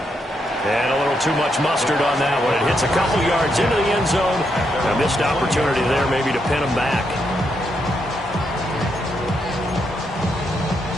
And a little too much mustard on that one. It hits a couple yards into the end zone. A missed opportunity there maybe to pin him back.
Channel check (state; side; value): normal; both; correlation 0.80